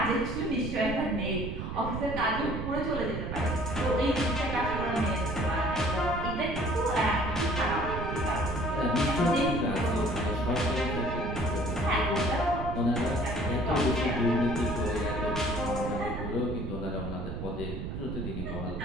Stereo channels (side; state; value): right; noise; rumble, 5 dB below the sound